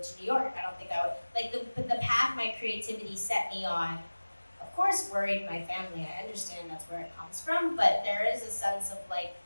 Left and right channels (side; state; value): both; inverted; correlation -1.00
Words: to New York. I don't think I would, the path my creativity set me on, of course, worried my family. I understand that's where it comes from, but there is a sense of like,